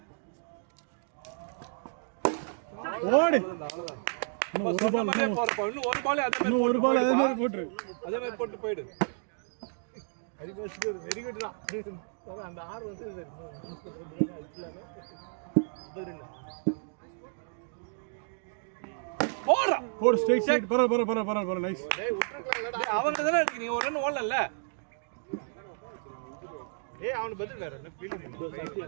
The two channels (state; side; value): silent; left; digital silence